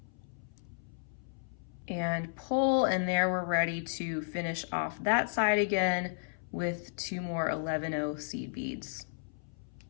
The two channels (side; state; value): right; silent; 55 dB below the other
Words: and pull, and there we're ready to finish off that side again with 2 more 11-0 seed beads.